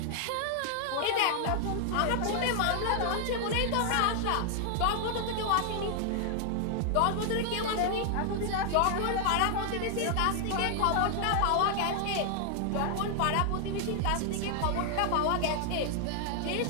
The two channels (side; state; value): both; different; correlation 0.00